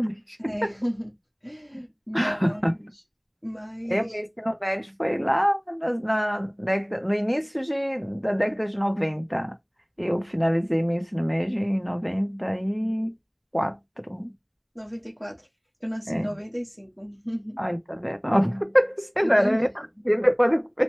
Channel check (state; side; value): identical; both; correlation 1.00